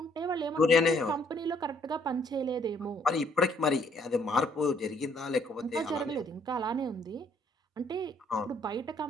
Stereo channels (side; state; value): both; normal; correlation 0.66